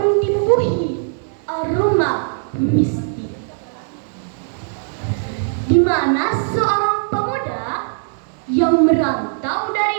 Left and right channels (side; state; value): left; silent; digital silence